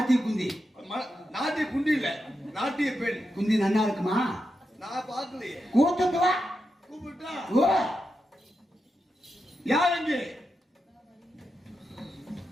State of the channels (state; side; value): normal; both; correlation 0.87